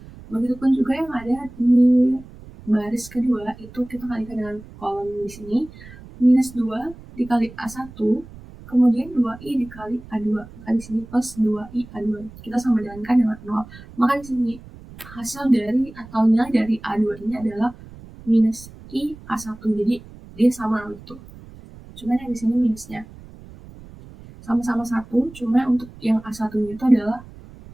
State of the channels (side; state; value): right; noise; rumble, 18 dB below the sound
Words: Begitupun juga yang ada di baris kedua, itu kita kalikan dengan kolom di sini. Minus 2 dikali A1, kemudian 2i dikali A2. Maka di sini plus 2i A2. Kita sama dengankan dengan 0. Maka di sini hasil dari atau nilai dari A2 ini adalah minus i A1. Jadi dia sama itu. Cuman yang di sini minusnya sama-sama 1, cuma untuk yang A1-nya itu adalah,